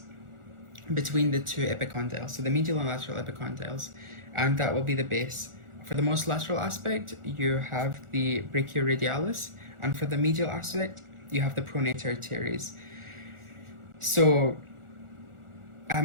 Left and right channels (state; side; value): late; left; 1.4 ms